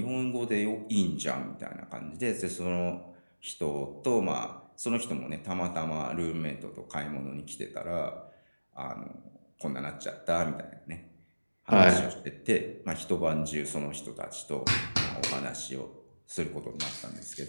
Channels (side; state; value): both; inverted; correlation -1.00